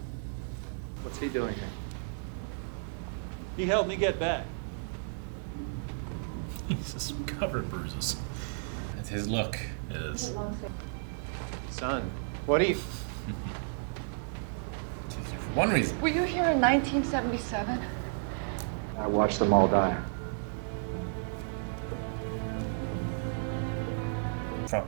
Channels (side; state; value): left; silent; digital silence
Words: What's he doing here? He helped me get back. He's just covered in bruises. That's his look. It is. Son, what do you... For one reason. Were you here in 1977? I watched them all die.